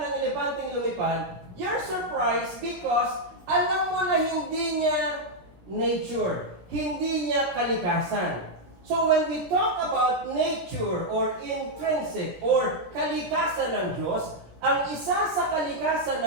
elepanteng lumipad, you're surprised because alam mo na hindi niya nature, hindi niya kalikasan. So when we talk about nature or intrinsic or kalikasan ng Diyos, ang isa sa kalikasan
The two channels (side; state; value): left; late; 16 ms